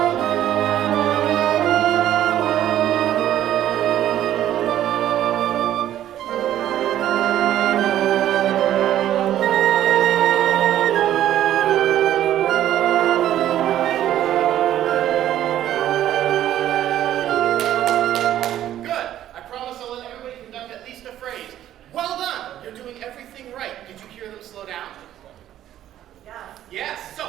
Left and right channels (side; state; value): left; quieter; 12.1 dB